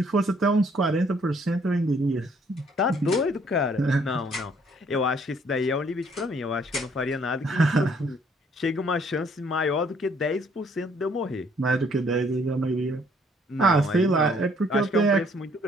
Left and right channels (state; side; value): normal; both; correlation 0.64